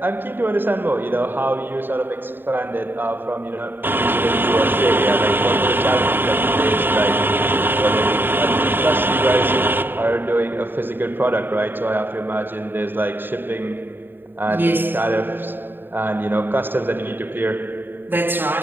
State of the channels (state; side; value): late; left; 0.095 ms